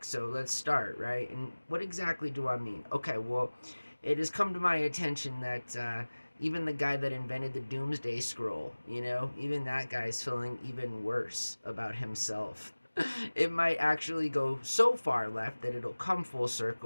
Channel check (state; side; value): inverted; both; correlation -1.00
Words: so let's start, right? And what exactly do I mean? Okay, well, it has come to my attention that even the guy that invented the Doomsday Scroll, even that guy's feeling even worse about himself. It might actually go so far left that it'll come full